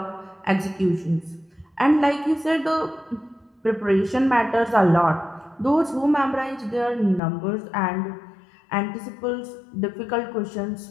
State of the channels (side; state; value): right; drops out; at 7.2 s